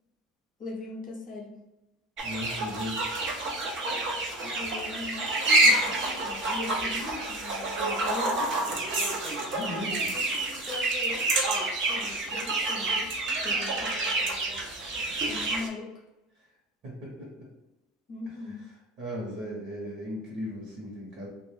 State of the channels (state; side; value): normal; both; correlation 0.30